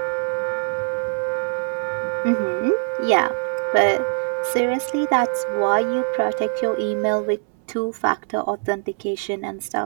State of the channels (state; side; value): silent; left; 64 dB below the other